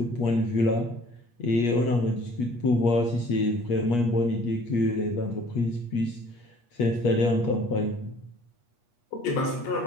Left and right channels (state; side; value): late; right; 8.4 ms